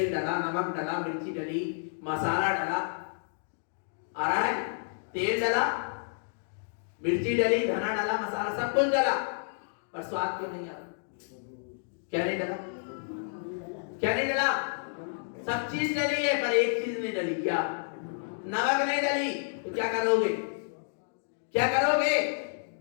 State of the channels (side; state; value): right; silent; digital silence